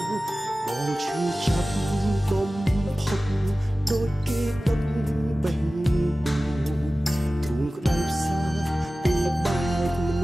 បងឈឺចាប់បំផុតដូចគេដុតបេះទ្រូងក្តៅផ្សាពីបែកមន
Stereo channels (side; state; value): both; normal; correlation 0.96